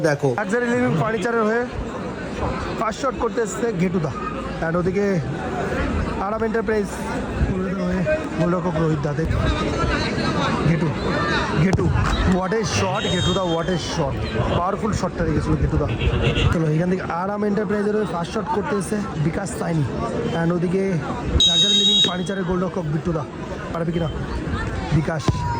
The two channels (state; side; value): identical; both; correlation 1.00